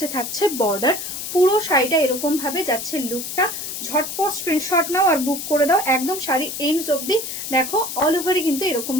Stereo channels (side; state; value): left; noise; hiss, 6 dB below the sound